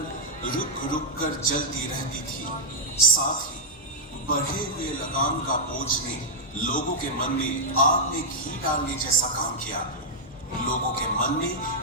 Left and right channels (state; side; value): normal; both; correlation -0.05